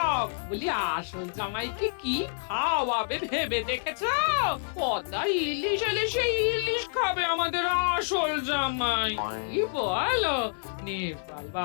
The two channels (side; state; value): right; silent; 59 dB below the other